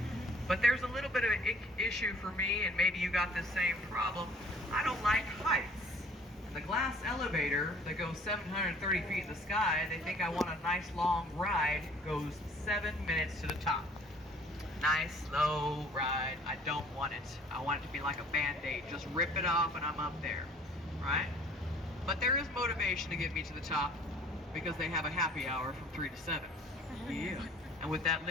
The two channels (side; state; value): both; normal; correlation 0.54